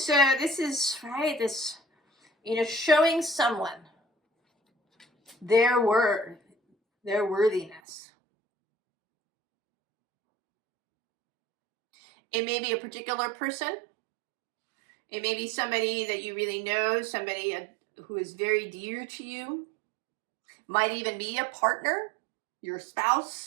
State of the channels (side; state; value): left; drops out; at 7.8 s